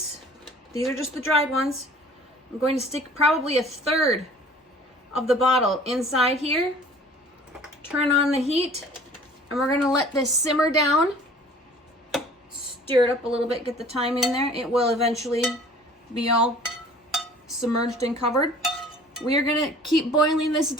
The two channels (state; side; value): normal; both; correlation 0.49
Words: these are just the dried ones. I'm going to stick probably 1/3 of the bottle inside here. Turn on the heat, and we're going to let this simmer down. Stir it up a little bit, get the thyme in there. It will eventually be all submerged and covered. We are going to keep boiling this